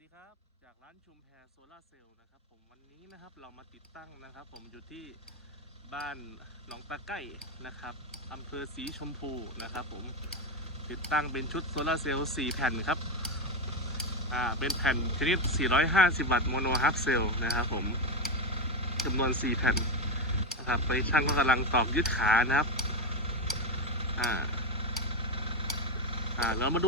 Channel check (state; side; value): normal; both; correlation 0.12